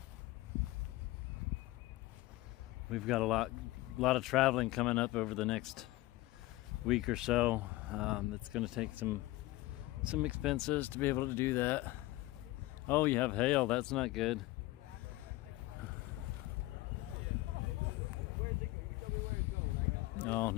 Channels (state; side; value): quieter; right; 18.8 dB